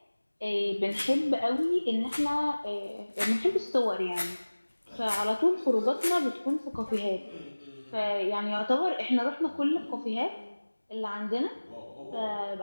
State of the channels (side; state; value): both; inverted; correlation -1.00